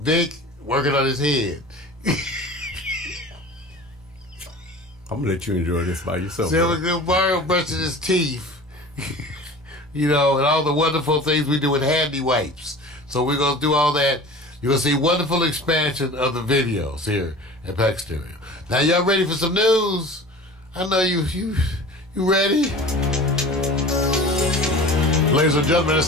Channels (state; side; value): normal; both; correlation 0.39